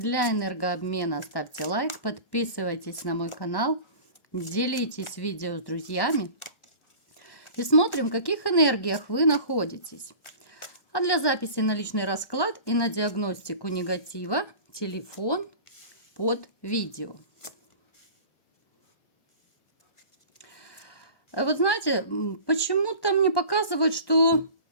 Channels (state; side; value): late; right; 1.4 ms